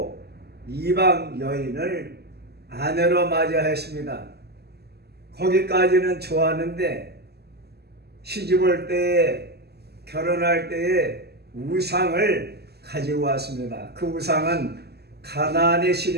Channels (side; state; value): left; late; 0.47 ms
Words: 이방 여인을 아내로 맞이했습니다. 거기까지는 좋았는데 시집올 때에, 결혼할 때에 우상을 가지고 왔습니다. 그 우상은 가나안의